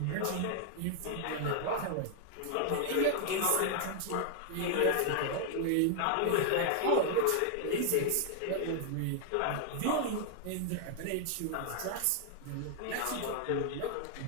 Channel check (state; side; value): different; both; correlation 0.00